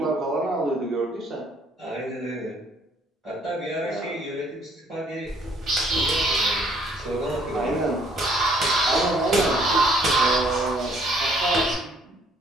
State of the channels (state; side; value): normal; both; correlation 0.63